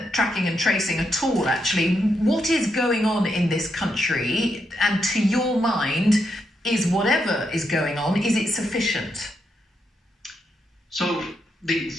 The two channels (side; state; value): both; normal; correlation 0.81